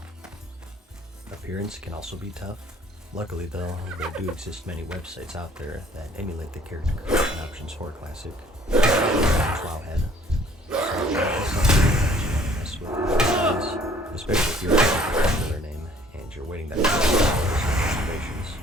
Appearance can also be tough. Luckily though, there do exist many websites out there that emulate the character creation options for Classic. Wowhead. So that's something that you want to mess with, especially if you're looking for a popular name and you're waiting that for observations.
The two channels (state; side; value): normal; both; correlation 0.57